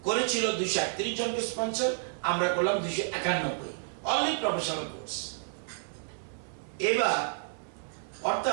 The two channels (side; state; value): left; silent; 57 dB below the other